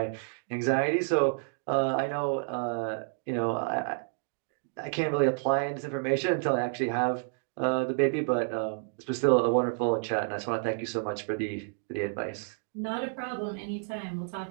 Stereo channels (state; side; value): silent; left; digital silence